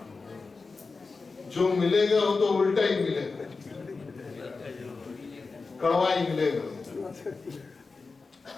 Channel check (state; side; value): quieter; right; 4.2 dB